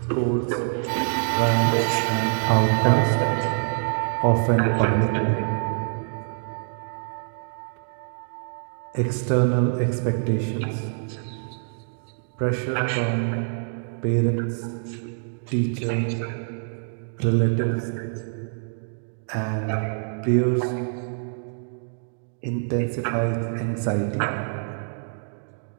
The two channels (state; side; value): silent; left; digital silence